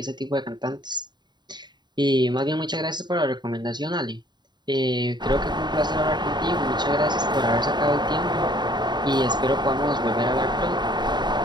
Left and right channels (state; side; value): late; left; 0.21 ms